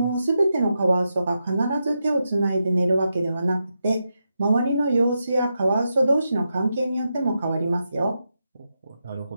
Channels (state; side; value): inverted; both; correlation -0.86